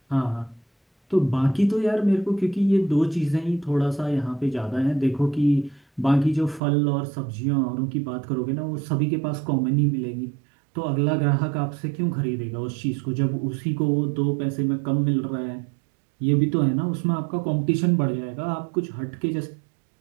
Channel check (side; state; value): left; drops out; at 6.6 s